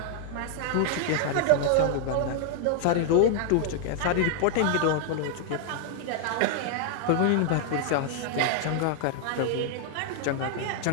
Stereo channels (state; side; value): different; both; correlation 0.00